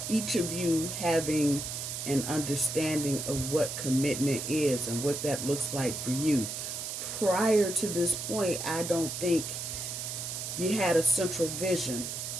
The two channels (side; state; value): right; noise; hiss, 5 dB below the sound